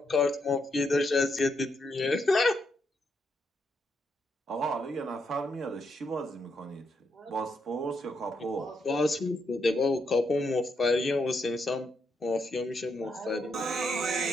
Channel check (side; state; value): both; normal; correlation 0.79